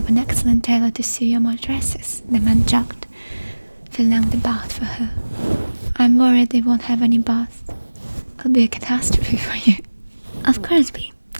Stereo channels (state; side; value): inverted; both; correlation -1.00